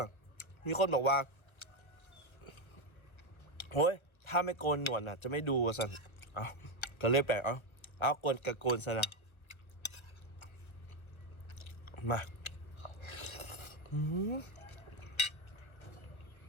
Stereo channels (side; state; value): right; late; 1.3 ms